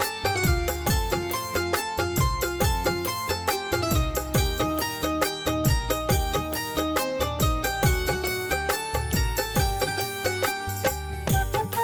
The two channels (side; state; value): both; identical; correlation 1.00